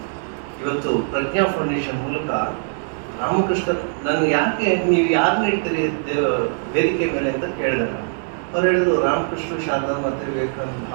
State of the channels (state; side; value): silent; left; 65 dB below the other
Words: ಇವತ್ತು ಪ್ರಜ್ಞಾ ಫೌಂಡೇಶನ್ ಮೂಲಕ ರಾಮಕೃಷ್ಣ, ನಾನು ಯಾಕೆ ನೀವು ಯಾರನ್ನ ಇಡ್ತೀರಿ ವೇದಿಕೆ ಮೇಲೆ ಅಂತ ಕೇಳಿದೆ ನಾನು. ಅವ್ರು ಹೇಳಿದ್ರು, ರಾಮಕೃಷ್ಣ, ಶಾರದಾ ಮತ್ತು ವಿವೇಕಾನಂದ